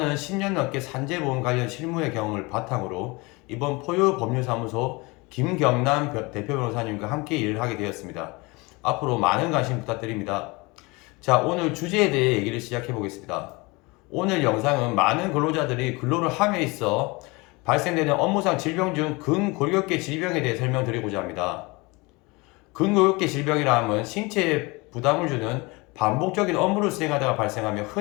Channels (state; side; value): quieter; right; 25.3 dB